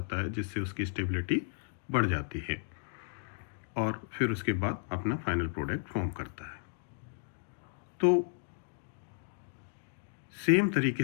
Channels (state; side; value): silent; right; digital silence